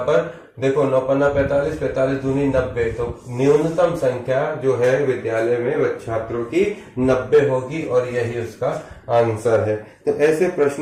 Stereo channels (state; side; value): identical; both; correlation 1.00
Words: देखो 9 पन्ना 45, 45 दूनी 90। तो न्यूनतम संख्या जो है विद्यालय में छात्रों की 90 होगी और यही उसका आंसर है। तो ऐसे